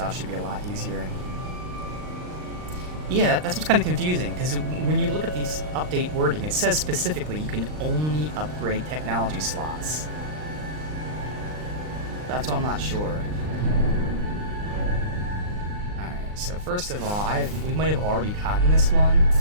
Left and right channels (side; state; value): left; late; 39 ms